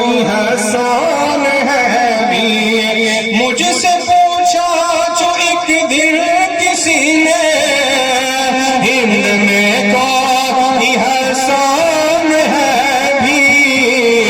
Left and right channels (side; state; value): both; identical; correlation 1.00